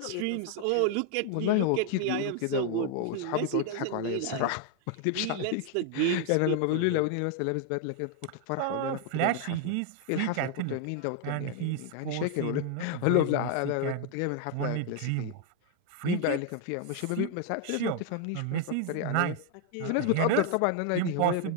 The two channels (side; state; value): both; different; correlation 0.00